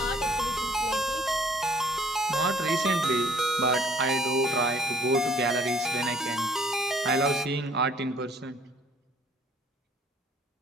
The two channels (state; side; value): normal; both; correlation 0.60